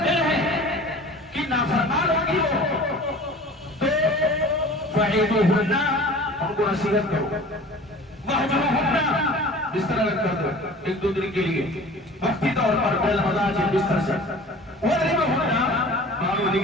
دل ہے کہ نافرمان ہوگی وہ تو فَعِدُوهُنَّ، ان کو نصیحت کرو، وَحْجُرُوهُنَّ، بستر الگ کر دو ایک دو دن کے لیے وقتی طور پر بالمضاجع بستر سے، وَضْرِبُوهُنَّ، مانو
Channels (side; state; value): both; normal; correlation 0.42